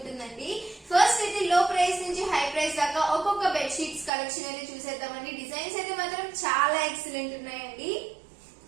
ఫస్ట్ అయితే లో ప్రైస్ నుంచి హై ప్రైస్ దాకా ఒక్కొక్క బెడ్ షీట్స్ కలెక్షన్ అయితే చూసేద్దామండి. డిజైన్స్ అయితే మాత్రం చాలా ఎక్సలెంట్ ఉన్నాయండి.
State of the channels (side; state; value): left; drops out; at 4.1 s